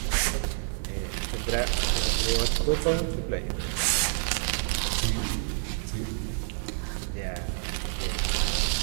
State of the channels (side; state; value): left; silent; 59 dB below the other